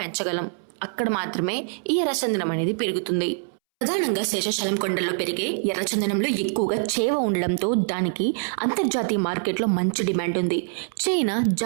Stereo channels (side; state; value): left; silent; 62 dB below the other